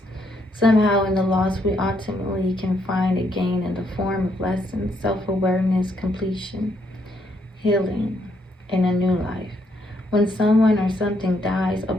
Somehow in the loss we ultimately can find a gain in the form of lessons, self-awareness, completion, healing, and a new life. When someone or something dies, a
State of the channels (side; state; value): both; normal; correlation 0.73